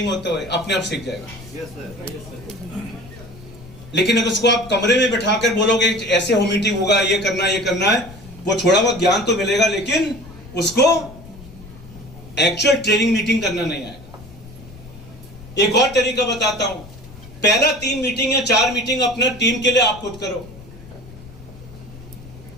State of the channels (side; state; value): left; noise; rumble, 18 dB below the sound